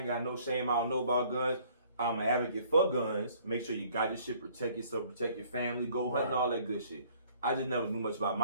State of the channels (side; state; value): both; inverted; correlation -0.58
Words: got no shame. I don't know about guns. I'm an advocate for guns. Make sure you got your shit. Protect yourself. Protect your family. Go hunting. All that good shit. I just never knew much about